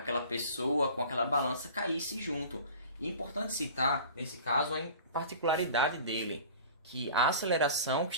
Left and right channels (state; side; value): inverted; both; correlation -0.41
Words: pessoa com aquela balança caísse junto. E é importante citar, nesse caso, a particularidade dele, que a aceleração que